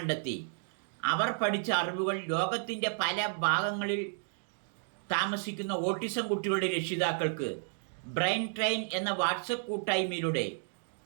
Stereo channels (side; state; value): left; silent; digital silence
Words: അവർ പഠിച്ച അറിവുകൾ ലോകത്തിൻ്റെ പല ഭാഗങ്ങളിൽ താമസിക്കുന്ന ഓട്ടിസം കുട്ടികളുടെ രക്ഷിതാക്കൾക്ക് ബ്രെയിൻ ട്രെയിൻ എന്ന വാട്സപ്പ് കൂട്ടായ്മയിലൂടെ